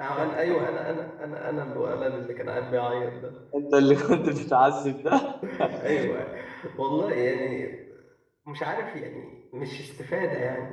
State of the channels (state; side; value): identical; both; correlation 1.00